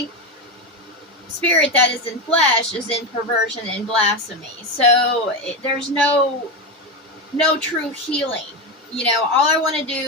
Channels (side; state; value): both; normal; correlation 0.14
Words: spirit that is in flesh is in perversion and blasphemy. So there's no true healing. All I want to